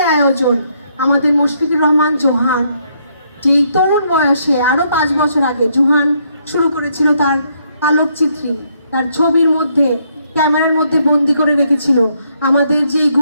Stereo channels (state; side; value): inverted; both; correlation -0.73